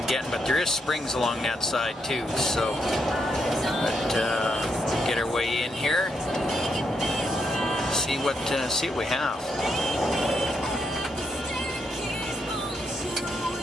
getting. But there is springs along that side too, so get our way in here. See what we have.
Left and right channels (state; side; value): normal; both; correlation 0.79